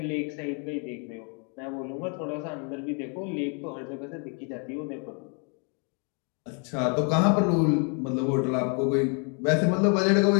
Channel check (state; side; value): quieter; right; 37.9 dB